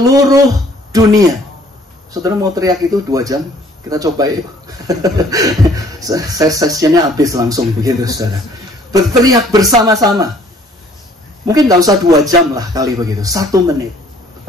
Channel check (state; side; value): normal; both; correlation 0.58